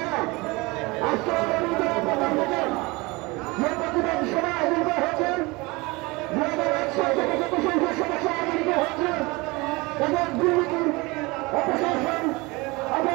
আজকে প্রধান বছর যে প্রতিবাদ সভা আয়োজন করা হয়েছে 2001 সাল থেকে যত সংখ্যক সমস্যা আয়োজিত হয়েছে এবং দুর্নীতি অপশাসন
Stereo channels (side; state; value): left; quieter; 24.3 dB